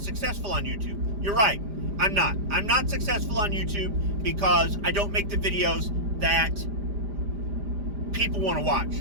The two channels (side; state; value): left; late; 5.0 ms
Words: successful on YouTube. You're right, I'm not. I'm not successful on YouTube because I don't make the videos that people want to